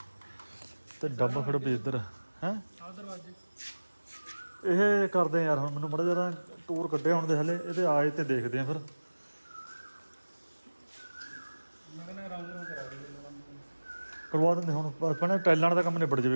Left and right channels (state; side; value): inverted; both; correlation -1.00